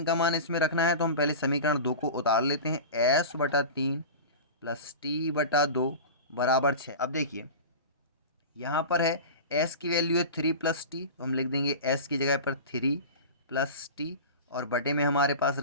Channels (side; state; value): both; inverted; correlation -0.30